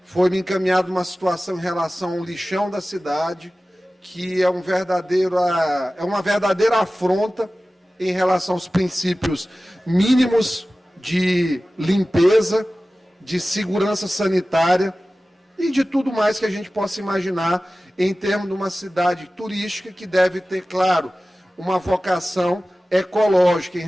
Foi-me encaminhada uma situação em relação ao lixão da cidade, que é uma verdadeira afronta em relação aos princípios mínimos de limpeza, de segurança sanitária e de tudo mais que a gente possa imaginar em termos de uma cidade turística que deve ter, claro, uma vocação ecológica em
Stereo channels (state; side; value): normal; both; correlation 0.96